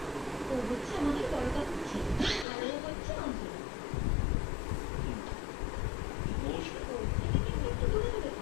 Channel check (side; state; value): right; drops out; at 2.5 s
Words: ও হচ্ছে আমাদের বড় কাকুর ছেলে, আর ও হচ্ছে অঞ্জলি। নমস্কার। ওর থেকে কিন্তু একটু দূরে দূরে